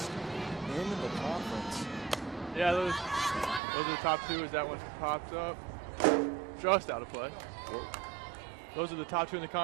in the conference. Yeah, those are the top 2 as that one popped up. Just out of play. Whoa. Those are the top 2 in the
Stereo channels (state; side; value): drops out; left; at 3.6 s